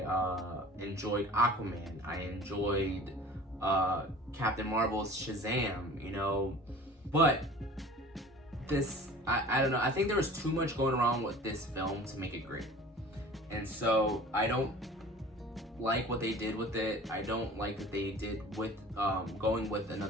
enjoyed Aquaman. I enjoyed Captain Marvel's Shazam, you know. But this, I don't know, I think there was too much going wrong with this film to make it great. And so I don't like what they did with it. I don't like that they did with going with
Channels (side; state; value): both; normal; correlation 0.43